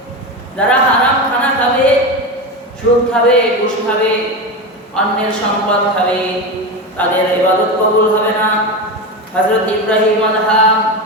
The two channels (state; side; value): normal; both; correlation 0.19